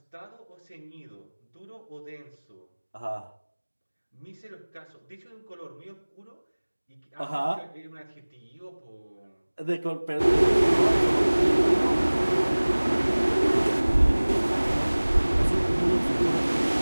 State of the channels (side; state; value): both; inverted; correlation -1.00